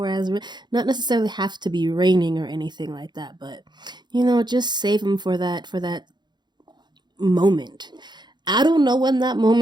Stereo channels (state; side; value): late; left; 0.21 ms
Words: not necessarily have to be raining or anything like that, but just save them for that moment. I don't know when that